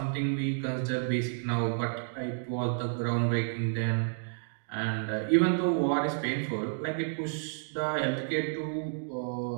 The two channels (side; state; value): left; silent; digital silence